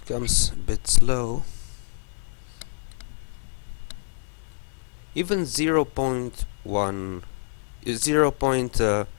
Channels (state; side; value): silent; right; digital silence